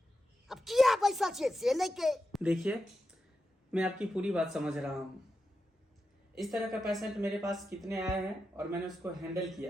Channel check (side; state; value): both; normal; correlation 0.89